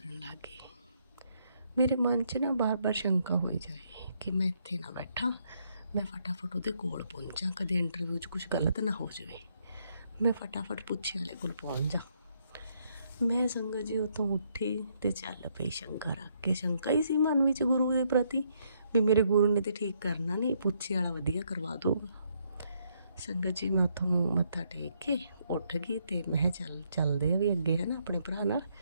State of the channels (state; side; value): inverted; both; correlation -0.73